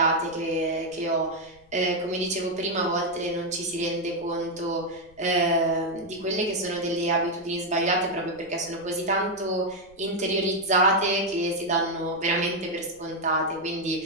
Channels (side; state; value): left; noise; rumble, 27 dB below the sound